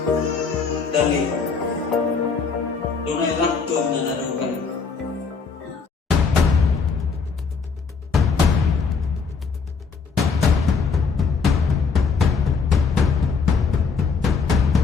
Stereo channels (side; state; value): right; quieter; 5.2 dB